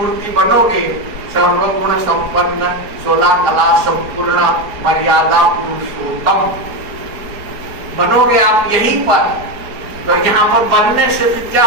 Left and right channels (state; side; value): late; left; 4.7 ms